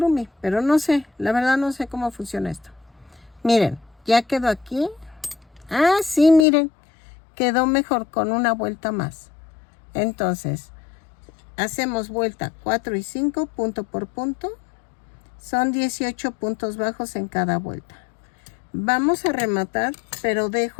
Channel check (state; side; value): drops out; right; at 6.5 s